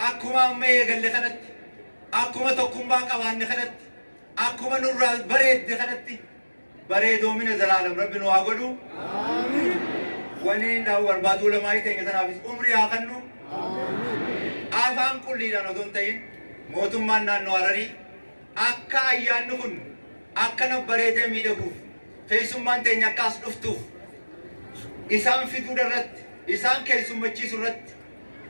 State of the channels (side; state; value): both; inverted; correlation -1.00